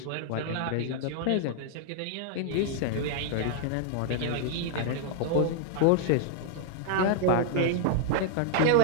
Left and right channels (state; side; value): different; both; correlation 0.00